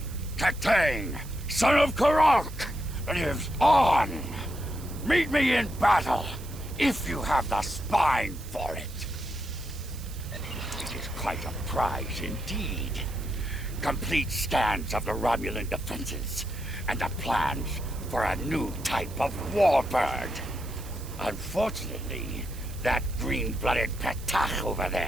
Katang, son of Karok, lives on. Meet me in battle, if you have the spine for it. It is quite a prize indeed. Complete scans of the Romulan defenses, and the plans for a new type of warbird. Unfortunately, that green-blooded Petach over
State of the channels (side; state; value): right; noise; hiss, 17 dB below the sound